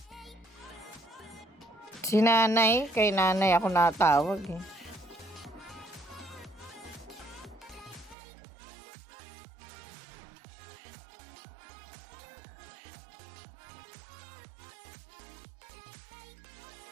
Si nanay, kay nanay ako natawag eh.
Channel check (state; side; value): drops out; left; at 8.2 s